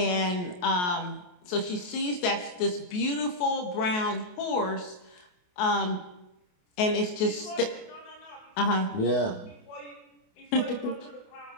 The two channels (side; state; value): right; late; 28 ms